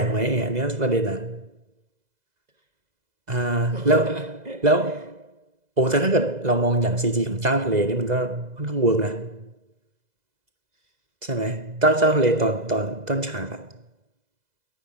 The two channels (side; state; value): left; late; 2.0 ms